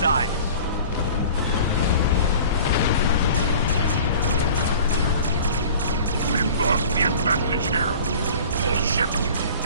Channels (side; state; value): both; inverted; correlation -0.43